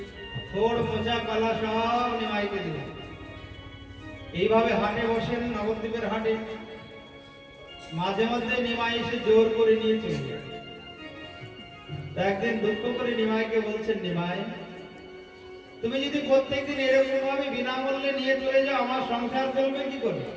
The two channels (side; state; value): both; identical; correlation 1.00